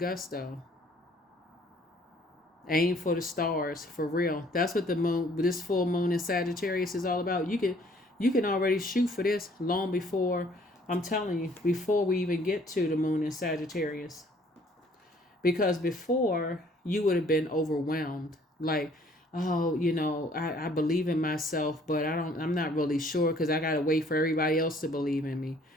Aim for the stars, for real. That's what this full moon in Sagittarius is all about. You can already shoot for this long before, I'm telling you, before we even get to the moon in Sagittarius. Because before, you would have been overwhelmed. Like, oh, I believe in myself, but I'm not really sure, because I got to wait for everybody else to believe in me.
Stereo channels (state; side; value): normal; both; correlation 0.59